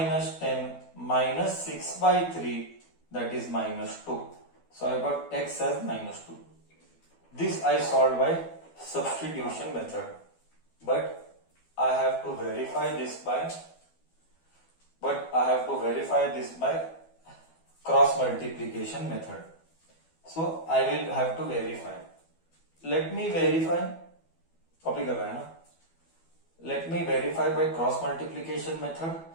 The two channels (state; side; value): late; right; 12 ms